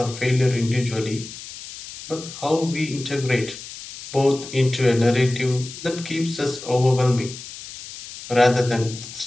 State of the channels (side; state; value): left; noise; hiss, 13 dB below the sound